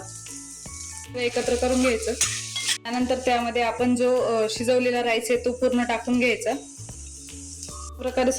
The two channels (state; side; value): identical; both; correlation 1.00